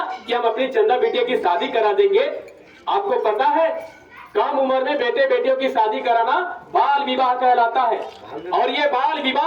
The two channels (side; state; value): both; identical; correlation 1.00